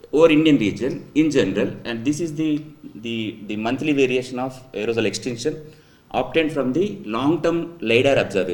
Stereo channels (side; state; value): both; identical; correlation 1.00